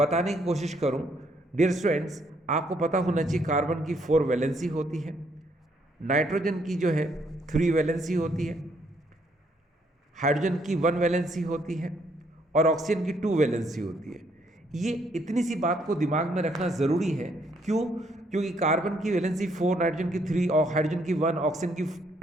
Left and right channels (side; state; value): both; normal; correlation 0.70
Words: की कोशिश करूँ। डियर स्टूडेंट्स, आपको पता होना चाहिए कार्बन की 4 वैलेंसी होती है, नाइट्रोजन की जो है 3 वैलेंसी होती है, हाइड्रोजन की 1 वैलेंसी होती है, और ऑक्सीजन की 2 वैलेंसी होती है। ये इतनी सी बात को दिमाग में रखना ज़रूरी है। क्यों? क्योंकि कार्बन की वैलेंसी 4, नाइट्रोजन की 3 और हाइड्रोजन की 1, ऑक्सीजन की